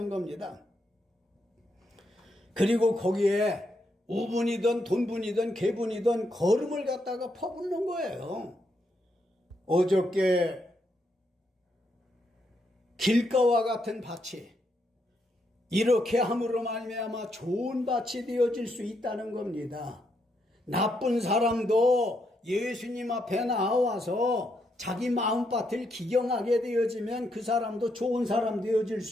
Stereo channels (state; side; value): normal; both; correlation 0.79